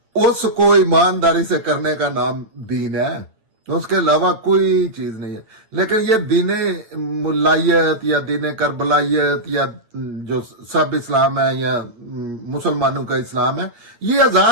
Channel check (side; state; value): left; late; 9.0 ms